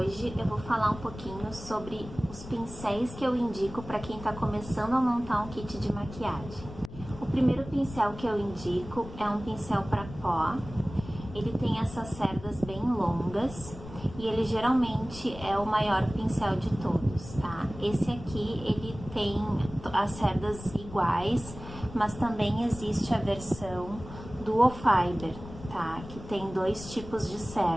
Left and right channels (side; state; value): left; noise; rumble, 14 dB below the sound